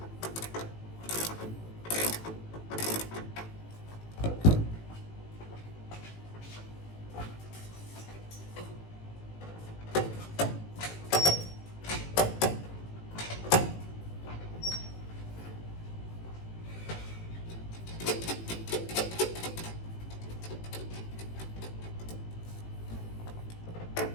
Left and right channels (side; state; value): right; late; 18 ms